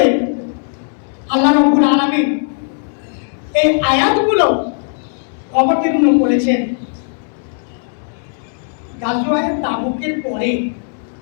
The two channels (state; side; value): silent; right; digital silence